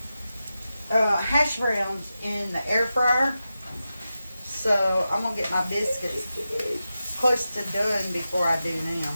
hash browns in the air fryer. So I'm going to get my biscuits close to done before I do them.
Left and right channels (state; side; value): inverted; both; correlation -0.92